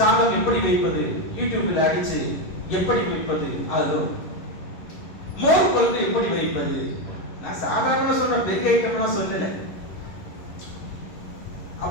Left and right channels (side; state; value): right; late; 11 ms